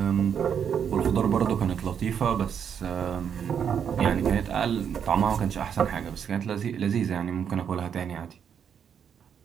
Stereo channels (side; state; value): left; quieter; 7.9 dB